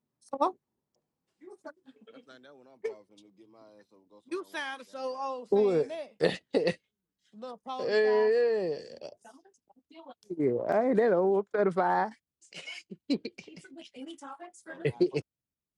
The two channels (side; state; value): both; identical; correlation 1.00